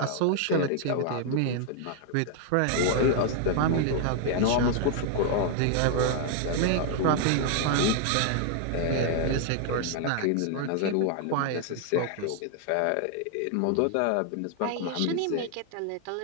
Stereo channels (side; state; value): both; different; correlation 0.00